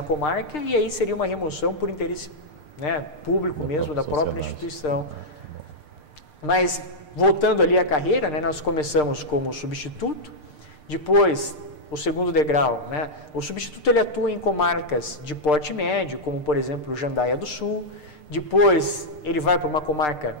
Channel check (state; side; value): late; right; 6.7 ms